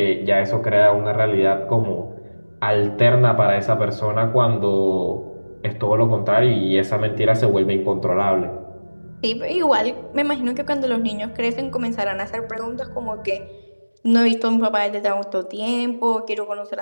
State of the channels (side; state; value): both; inverted; correlation -1.00